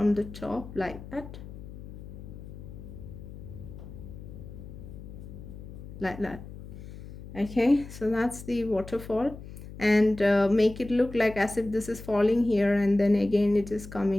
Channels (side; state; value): left; noise; hum, 13 dB below the sound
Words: the top like that, like that. Okay, so that's the waterfall, and make it look like as if this is falling here, and then again it is